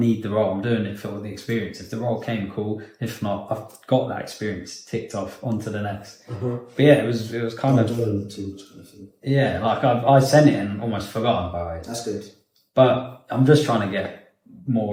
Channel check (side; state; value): both; identical; correlation 1.00